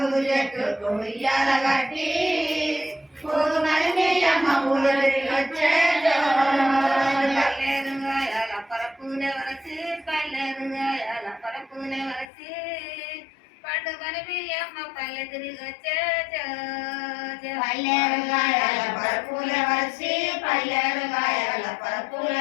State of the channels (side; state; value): right; drops out; at 12.2 s